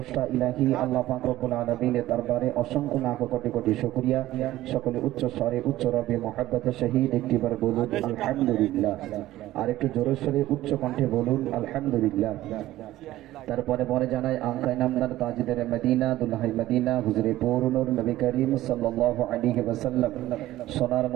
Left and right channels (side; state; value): left; quieter; 15.4 dB